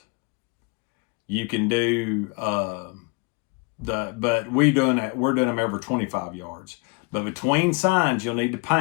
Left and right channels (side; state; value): right; quieter; 28.3 dB